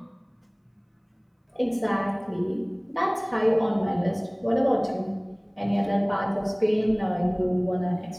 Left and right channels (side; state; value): both; identical; correlation 1.00